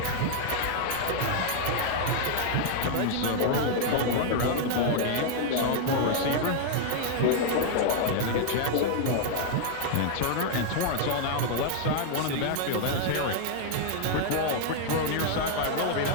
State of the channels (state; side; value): different; both; correlation 0.00